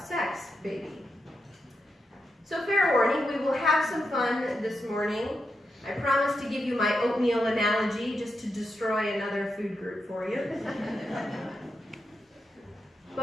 sex, baby." So fair warning, we will have some fun this morning. I promise to give you my oatmeal analogy just to destroy another food group for you.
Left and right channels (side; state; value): both; normal; correlation 0.85